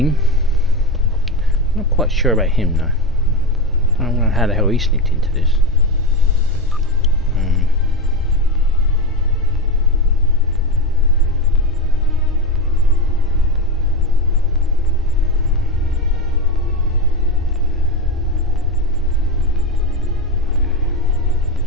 Not quite sure about him though. I don't know how the hell he sneaked into this.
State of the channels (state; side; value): normal; both; correlation 0.16